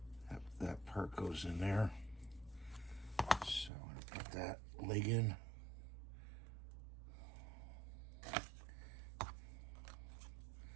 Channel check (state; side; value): drops out; left; at 3.7 s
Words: That part goes in there. So I'm going to put that leg in.